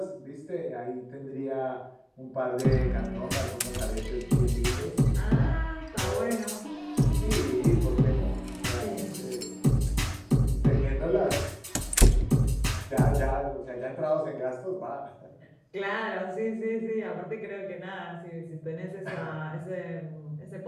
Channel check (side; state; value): both; identical; correlation 1.00